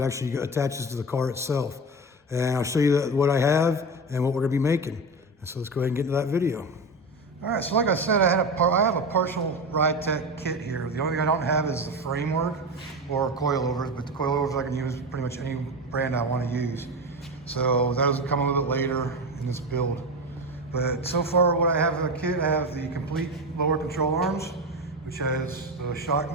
actually attaches to the car itself. And I'll show you what I have and what we're going to be making. And so let's go ahead and get into that video. All right, so like I said, I have a partial Ridetech kit here. The only thing I don't have is the framework or coilovers, but the coilovers I can use pretty much any brand I want to use. So that'll come a little bit later in this build. But so far what I have in the kit, I have the complete lower control arms, which has the shock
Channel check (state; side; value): normal; both; correlation 0.21